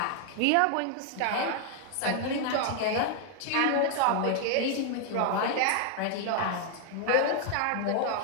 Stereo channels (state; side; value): different; both; correlation 0.00